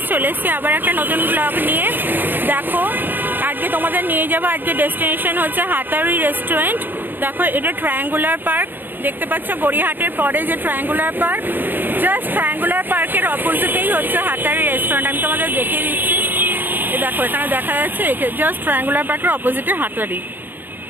चले एसेছি আবার একটা নতুন ব্লগ নিয়ে। দেখো আজকে তোমাদের নিয়ে যাব, আজকে ডেস্টিনেশন হচ্ছে হাতারি রেস্টুরেন্ট। দেখো এটা ট্রায়াঙ্গুলার পার্ক দেখতে পাচ্ছ, গড়িয়াহাটের পরে যে ট্রায়াঙ্গুলার পার্ক, জাস্ট ট্রায়াঙ্গুলার পার্কের অপোজিটেই হচ্ছে হাতারি রেস্টুরেন্ট। আমি তোমাদের দেখিয়ে দিচ্ছি, দেখো এখানে দেখা যাচ্ছে, জাস্ট ট্রায়াঙ্গুলার পার্কের অপোজিটে হাতারি।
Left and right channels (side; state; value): left; late; 0.092 ms